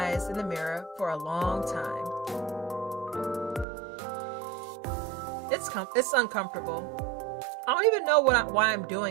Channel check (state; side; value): drops out; left; at 3.7 s